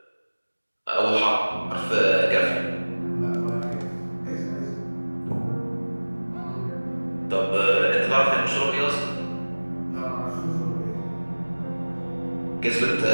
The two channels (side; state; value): both; inverted; correlation -1.00